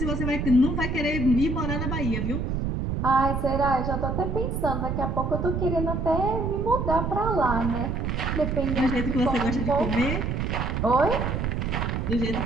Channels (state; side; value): noise; right; rumble, 1 dB below the sound